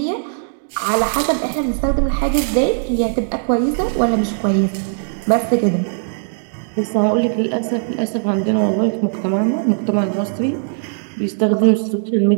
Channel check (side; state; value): left; silent; digital silence